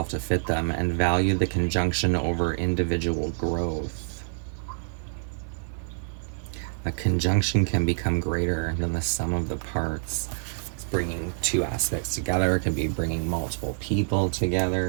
to fit them, and value the conjunction over individual growth. A conjunction can become greater than the sum of the parts. It's bringing two aspects together. It could be bringing multiple people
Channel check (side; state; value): left; silent; 60 dB below the other